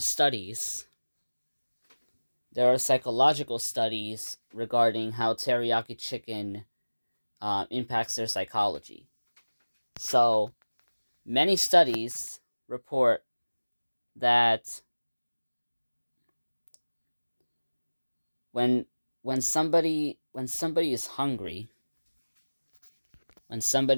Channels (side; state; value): both; inverted; correlation -1.00